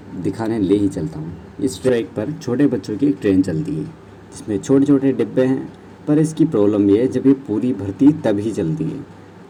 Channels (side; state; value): both; identical; correlation 1.00